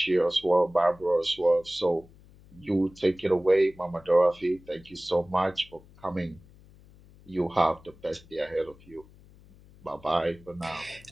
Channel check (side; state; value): left; noise; hum, 24 dB below the sound